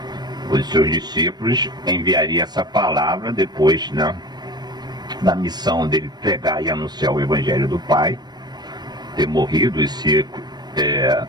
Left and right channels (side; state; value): left; late; 0.20 ms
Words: Os seus discípulos enviariam essa palavra depois, né, da missão dele pregar e anunciar o Evangelho do Pai, ter morrido e ser